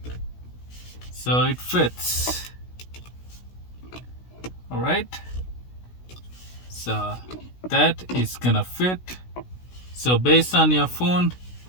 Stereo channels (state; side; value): late; right; 16 ms